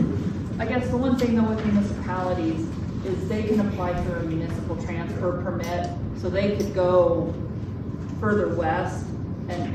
I guess the one thing though with municipalities is they can apply for a municipal transfer permit, so they could go further west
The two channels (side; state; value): both; identical; correlation 1.00